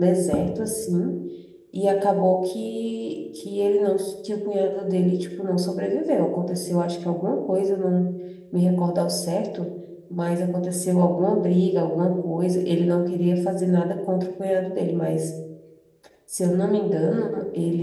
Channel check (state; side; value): identical; both; correlation 1.00